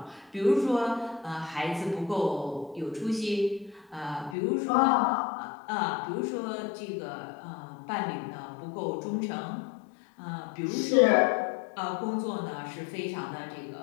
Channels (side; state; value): right; drops out; at 4.4 s